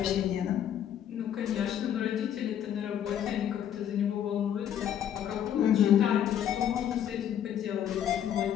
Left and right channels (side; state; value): right; quieter; 9.9 dB